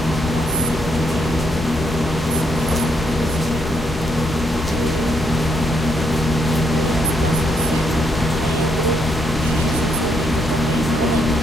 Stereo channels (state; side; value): normal; both; correlation 0.76